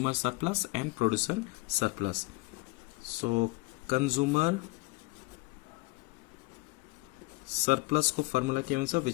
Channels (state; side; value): quieter; right; 24.3 dB